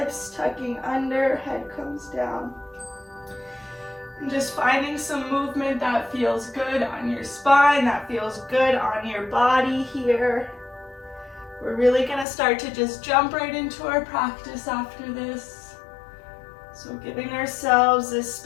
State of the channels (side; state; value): right; drops out; at 12.2 s